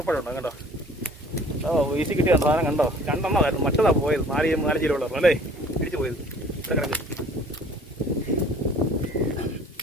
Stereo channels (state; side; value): normal; both; correlation 0.51